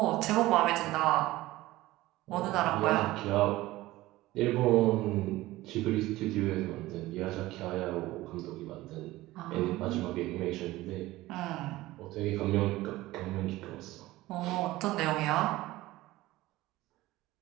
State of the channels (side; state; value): left; quieter; 17.6 dB